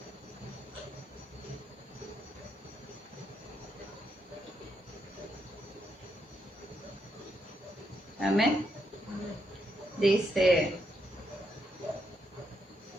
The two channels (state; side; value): normal; both; correlation 0.79